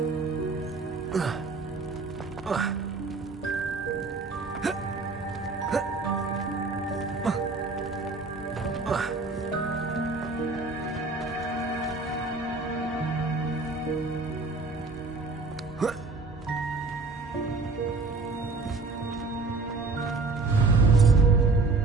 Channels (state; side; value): quieter; left; 3.8 dB